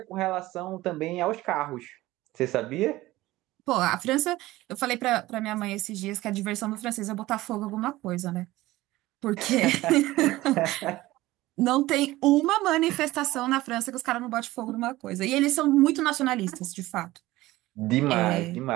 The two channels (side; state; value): left; quieter; 17.7 dB